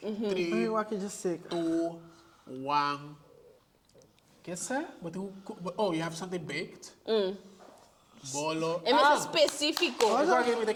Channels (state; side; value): identical; both; correlation 1.00